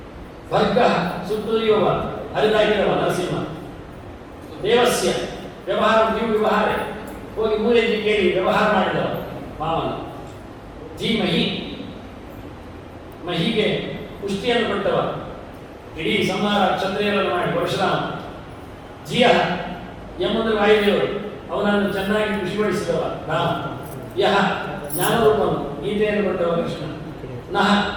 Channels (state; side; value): identical; both; correlation 1.00